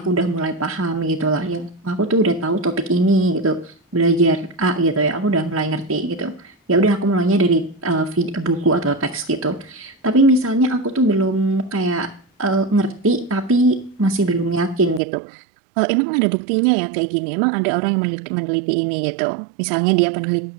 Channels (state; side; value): drops out; left; at 15.0 s